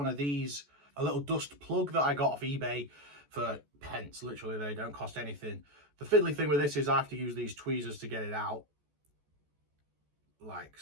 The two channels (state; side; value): late; left; 14 ms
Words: of these, a little dust plug that I got off eBay for pence. Literally, they don't cost anything. The fiddly thing with this is I have to use these tweezers to get it out. Like